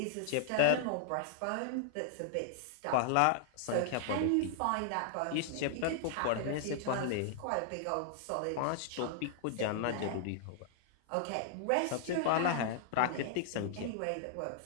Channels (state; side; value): different; both; correlation -0.01